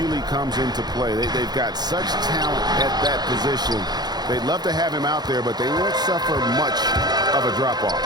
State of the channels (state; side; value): late; left; 0.20 ms